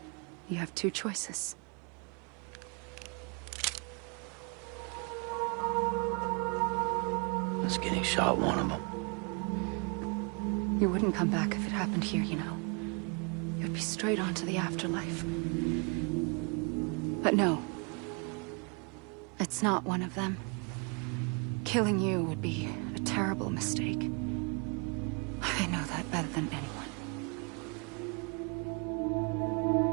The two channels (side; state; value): left; quieter; 33.7 dB